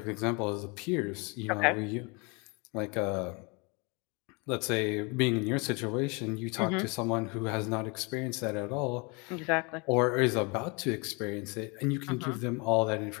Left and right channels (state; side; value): quieter; right; 30.6 dB